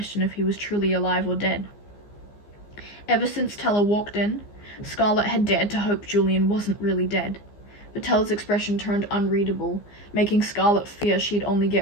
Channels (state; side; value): late; right; 15 ms